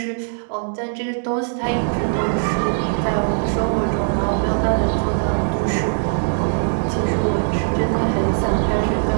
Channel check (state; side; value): silent; left; digital silence